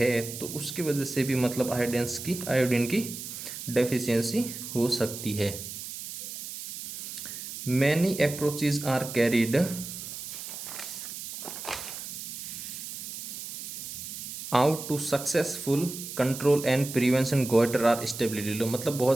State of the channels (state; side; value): noise; right; hiss, 9 dB below the sound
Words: तो उसकी वजह से भी मतलब आयोडीन की डेफिशिएंसी हो सकती है। Many approaches are carried out to successful control and prevention goitre are stability. मतलब